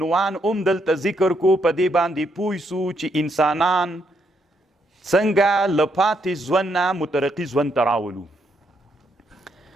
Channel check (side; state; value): both; normal; correlation 0.76